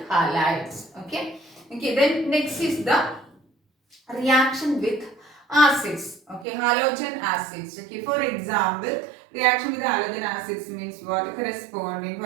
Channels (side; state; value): left; drops out; at 6.5 s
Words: halides. Okay. Okay. Then next is the reaction with acids. Okay. Halogen acids. Okay. For example, reaction with halogen acids means what? Corresponding,